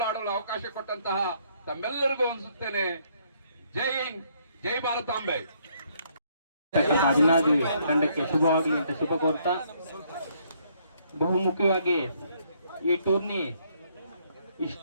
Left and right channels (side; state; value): both; inverted; correlation -0.69